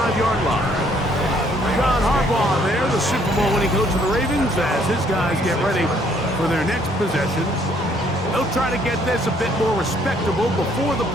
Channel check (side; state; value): both; normal; correlation 0.65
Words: line. John Harbaugh there, the Super Bowl winning coach of the Ravens, as his guys get ready for their next possession. They'll try to get this a bit more respectable before the